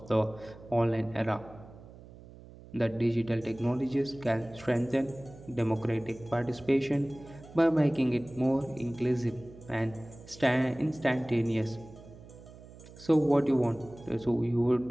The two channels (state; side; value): noise; right; hum, 19 dB below the sound